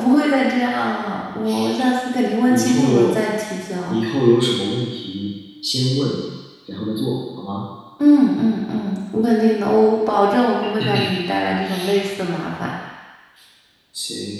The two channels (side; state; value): both; identical; correlation 1.00